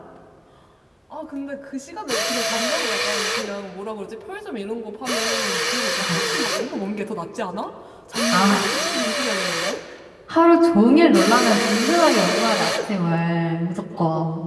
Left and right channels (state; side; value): identical; both; correlation 1.00